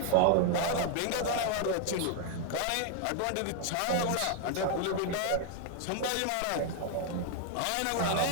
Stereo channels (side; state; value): both; different; correlation 0.00